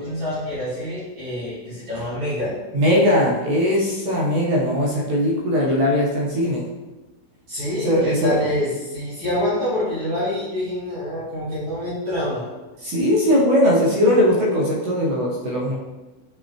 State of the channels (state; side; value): late; left; 16 ms